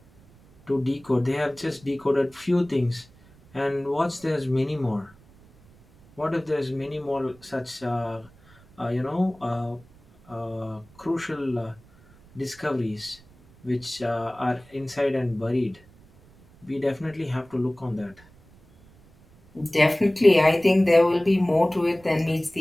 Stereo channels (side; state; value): right; noise; rumble, 27 dB below the sound